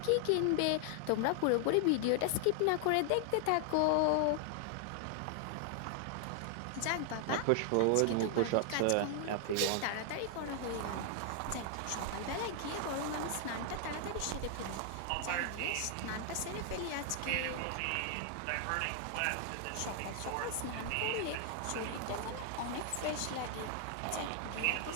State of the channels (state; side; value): different; both; correlation 0.00